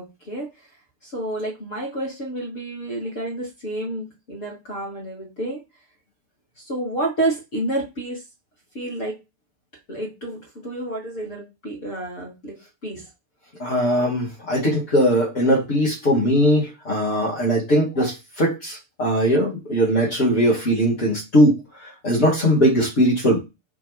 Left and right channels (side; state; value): right; late; 6.8 ms